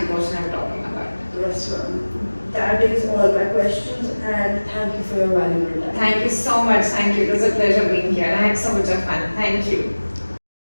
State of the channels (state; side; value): inverted; both; correlation -1.00